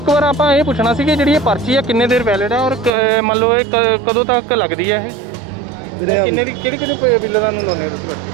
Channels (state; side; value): drops out; left; at 2.9 s